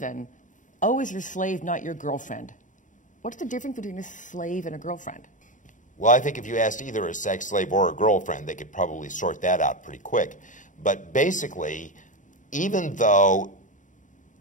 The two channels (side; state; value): right; late; 0.37 ms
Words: O is your slave, not your girlfriend. What's the difference between a slave and a girlfriend? Well, I think if you asked either a sex slave or a girlfriend, they could probably sort that out pretty quick. But basically, even though